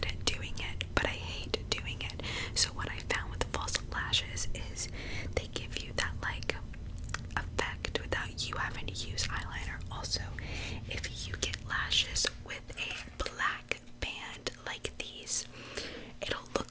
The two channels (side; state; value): both; identical; correlation 1.00